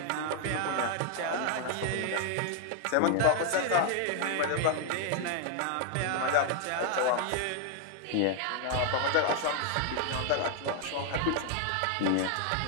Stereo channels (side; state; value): both; different; correlation 0.00